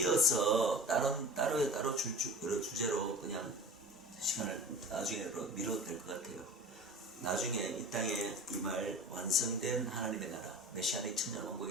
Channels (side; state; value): both; normal; correlation 0.37